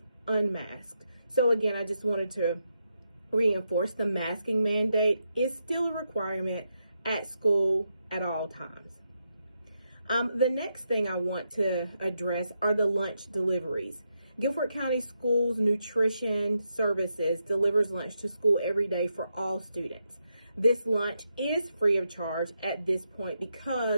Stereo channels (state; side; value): inverted; both; correlation -0.83